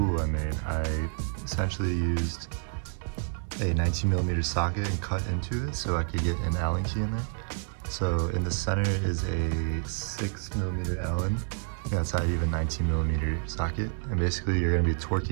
I made. I essentially used a 19mm socket and cut into it so I could get an Allen key in there. So in the center is a 6mm Allen. Outside you have a 19mm socket, and basically you're going to be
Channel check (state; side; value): silent; left; digital silence